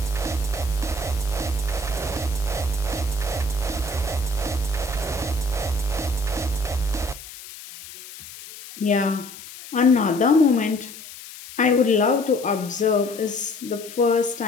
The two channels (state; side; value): noise; left; hiss, 15 dB below the sound